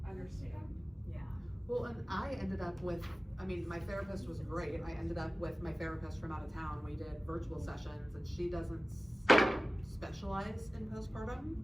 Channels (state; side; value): normal; both; correlation 0.97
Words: understand. Yeah. Well, and I ended up with, I mean, my therapist was great. I ended up with my therapist from out of town. We did virtual sessions, and she doesn't specialize in